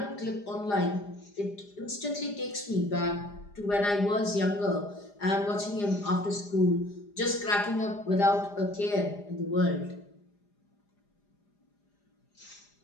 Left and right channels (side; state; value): right; late; 4.9 ms